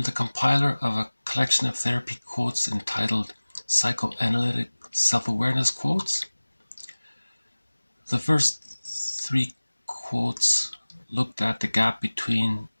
compiler of a collection of therapy quotes entitled Psychoanalytic Self-Awareness Quotes. The first three quotes looked at the gap between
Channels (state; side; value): inverted; both; correlation -1.00